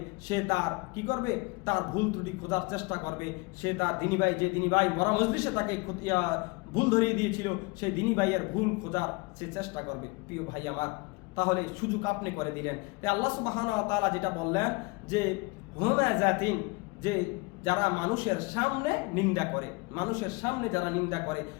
সে তার কি করবে? তার ভুল ত্রুটি খোঁজার চেষ্টা করবে। সে তার দিনী ভাই, যে দিনী ভাই মরা মজলিসে তাকে ভুল ধরিয়ে দিয়েছিল, সেই দিনী ভাইয়ের ভুল খোঁজার সে চেষ্টা করবে। প্রিয় ভাই আমার, তাহলে সুযোগ আপনি করে দিলেন। তাই আল্লাহ সুবহানাহু ওয়া তাআলা যেটা বললেন যে হুমাযাতিন, যে যারা মানুষের সামনে নিন্দা করে, মানুষের সামনে যারা নিন্দা করে।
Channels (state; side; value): quieter; right; 27.3 dB